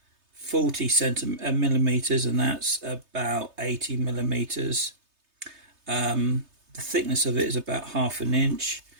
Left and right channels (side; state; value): left; late; 3.3 ms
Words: 40 millimeters, and that's about 80 millimeters. The thickness of it is about half an inch,